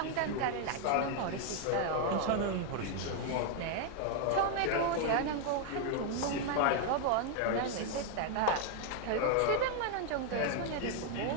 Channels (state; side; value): different; both; correlation 0.00